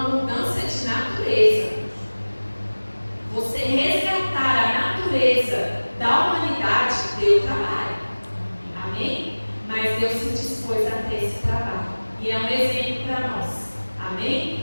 mudança de natureza. Você resgatar a natureza da humanidade deu trabalho. Amém? Mas Deus se dispôs a ter esse trabalho. E é um exemplo para nós. Amém?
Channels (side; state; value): both; inverted; correlation -1.00